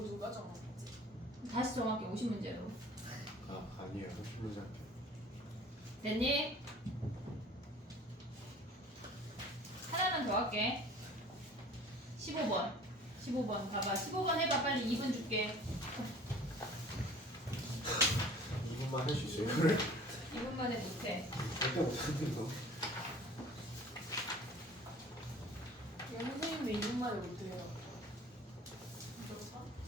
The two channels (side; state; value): both; normal; correlation 0.47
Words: 누가 정했지? 다시 정확히 50문제로. 아 아니에요. 30문제 할게요. 됐니? 하나만 더 할게. 15번. 15번 봐봐. 15번 해봐. 빨리 2분 줄게. 2분만 할 수 있어요. 이거를 2분 만에 못해. 절대 못하는 거. 얘 선생님도 2분 만에 못해요.